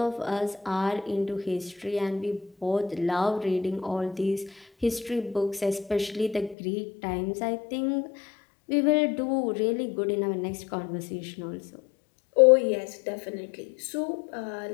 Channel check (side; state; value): right; drops out; at 6.6 s